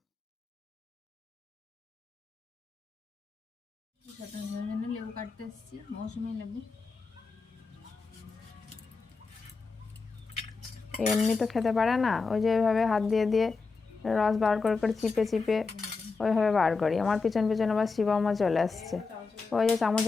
লেবু কাটতে এসেছি, মৌসুমি লেবু। এমনি তো খেতে পারে না, ওই যে ওইভাবে হাত দিয়ে দিয়ে রস বার করে করে চিপে চিপে ওইভাবে বার করি। আমার পিছন পিছন আবার শিবমও চলে আসছে, ওই যে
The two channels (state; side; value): quieter; right; 4.4 dB